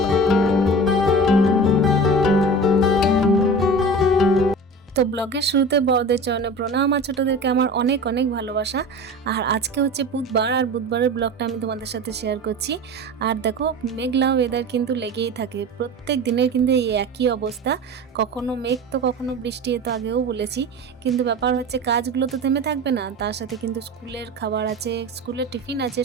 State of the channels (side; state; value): both; normal; correlation 0.34